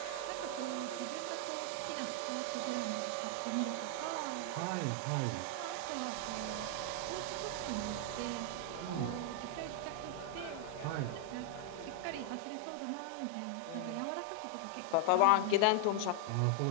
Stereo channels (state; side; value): different; both; correlation 0.00